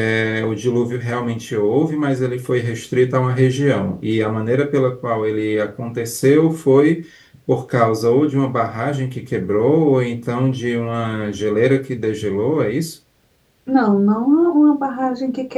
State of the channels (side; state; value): both; identical; correlation 1.00